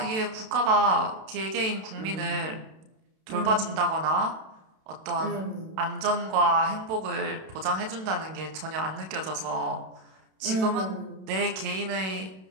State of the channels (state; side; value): late; left; 32 ms